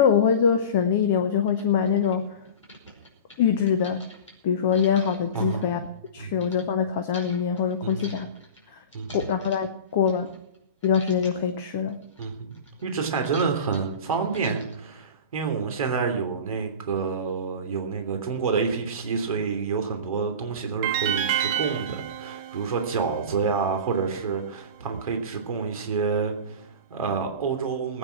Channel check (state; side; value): inverted; both; correlation -0.33